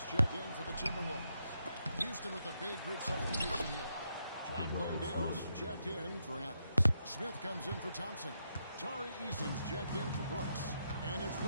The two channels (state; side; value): inverted; both; correlation -0.80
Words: checked in for the Timberwolves. Houston with a big group substitution here. John Landale's checked in for Adams. Smith comes in for Thompson. Tari Eason's checked in for Brooks. And it's